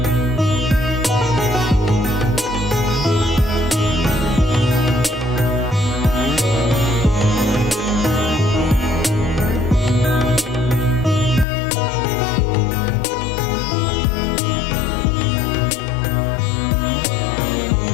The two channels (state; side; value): drops out; right; at 11.5 s